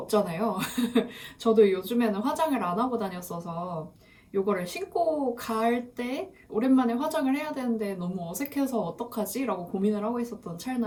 저도 요즘에는 화장을 안 하고 다녔어서 요거를 신고 갈 때 오랜만에 화장을 해야 되는데 너무 어색해서 어떡하지? 라고 고민을 하고 있었던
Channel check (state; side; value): identical; both; correlation 1.00